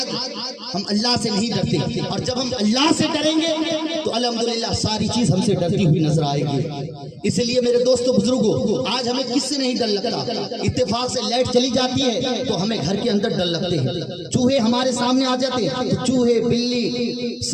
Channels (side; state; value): both; identical; correlation 1.00